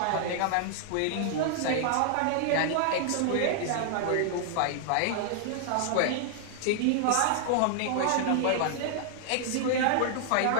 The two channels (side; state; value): both; different; correlation -0.01